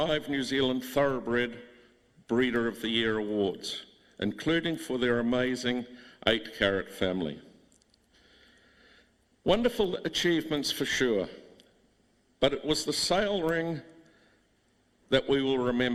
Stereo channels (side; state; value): both; identical; correlation 1.00